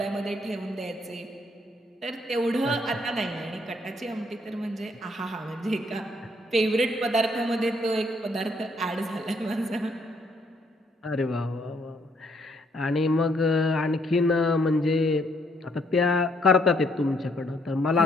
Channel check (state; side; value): normal; both; correlation 0.69